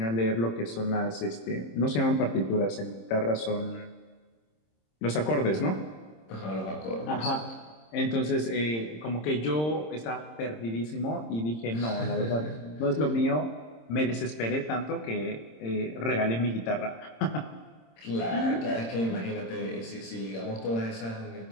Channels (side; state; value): right; late; 26 ms